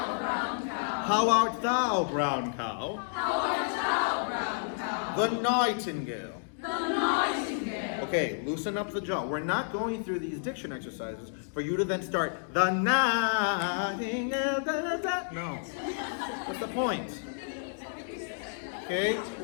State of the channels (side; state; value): right; silent; digital silence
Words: art thou, brown cow? The nightingale. Okay, loosen up the jaw. We're not going through these diction exercises for you to then start the nightingale. No. What's the point? Okay,